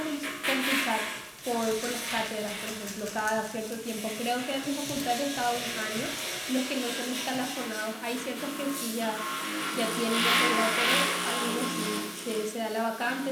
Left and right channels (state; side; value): identical; both; correlation 1.00